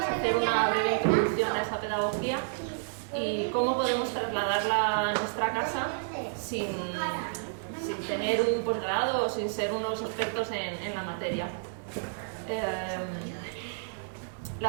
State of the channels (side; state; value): left; silent; digital silence